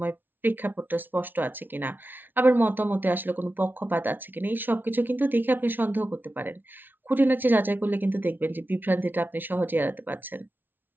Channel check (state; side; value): late; left; 0.093 ms